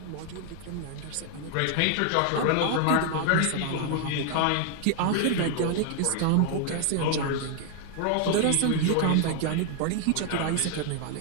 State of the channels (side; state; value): both; different; correlation 0.00